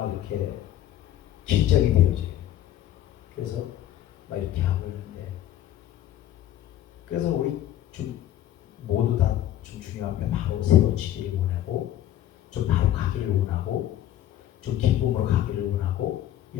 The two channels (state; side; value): quieter; right; 12.3 dB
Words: 이렇게 긴장이 되어져요. 그래서 막 이렇게 하고 있는데, 그래서 우리 좀 모두 다 좀 중요한 게 바로 세워지기를 원하고, 좀 바로 가기를 원하고, 좀 기쁨으로 가기를 원하고,